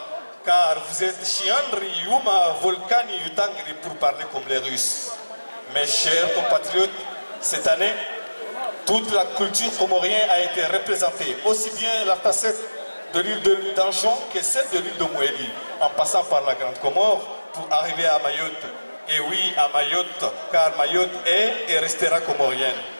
car vous êtes Chiandri, Yuma, Volcani, Yutangri pour parler comme les Russes. Mes chers compatriotes, cette année, toute la culture comorienne a été représentée, aussi bien la facette de l'île d'Anjon que celle de l'île de Mouéli, en passant par la Grande Comore pour arriver à Mayotte. Et oui, à Mayotte, car Mayotte est et restera comorienne.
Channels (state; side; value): inverted; both; correlation -1.00